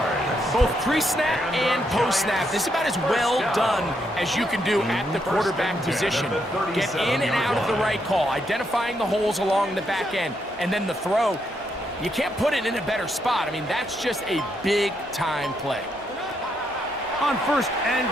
Both pre-snap and post-snap, this is about as well done as you can do at the quarterback position. Get in and out of the right call, identifying the holes along the back end, and then the throw. You can't put it in a better spot. I mean, that's just a big-time play. On first and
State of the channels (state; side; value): normal; both; correlation 0.78